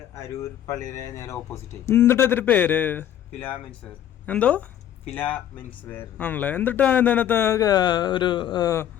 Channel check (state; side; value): quieter; right; 10.6 dB